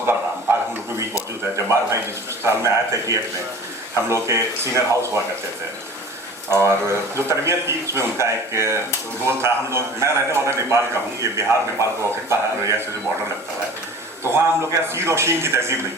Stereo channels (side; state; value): both; normal; correlation 0.42